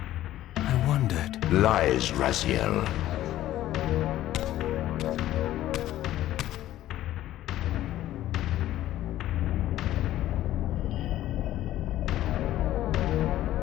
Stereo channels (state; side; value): quieter; right; 13.8 dB